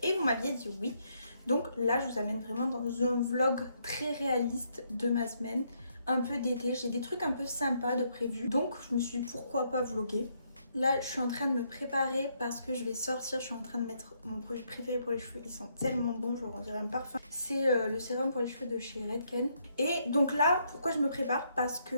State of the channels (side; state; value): both; inverted; correlation -0.74